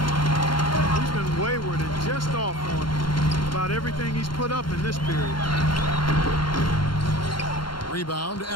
He's been wayward and just off on about everything he's put up in this period. Rebound,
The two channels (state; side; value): late; right; 0.72 ms